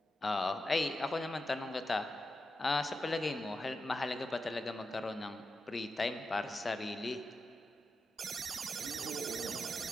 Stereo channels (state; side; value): normal; both; correlation 0.89